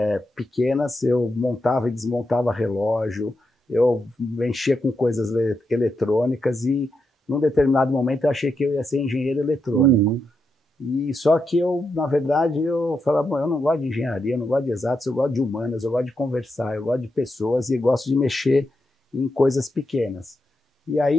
pequenas. Eu montava e desmontava relógio, eu mexia com coisas eletrônicas e num determinado momento eu achei que eu ia ser engenheiro eletrônico. E só que eu, na verdade, eu falava, bom, eu não gosto de engenharia, eu não gosto de exatos, eu gosto de humanas, eu gosto de conversar, eu gosto de pessoas e gosto de mexer em coisas pequenas. E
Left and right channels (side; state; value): both; normal; correlation 0.84